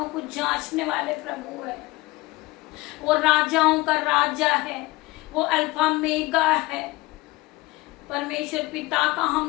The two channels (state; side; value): quieter; right; 21.0 dB